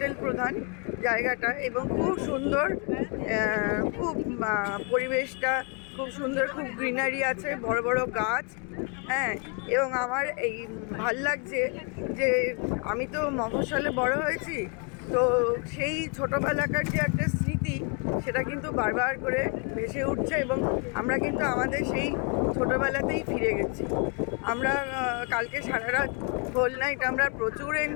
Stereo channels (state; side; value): quieter; right; 36.2 dB